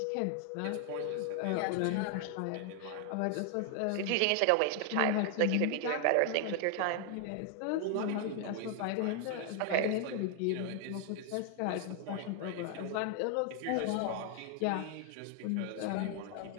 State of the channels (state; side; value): different; both; correlation 0.00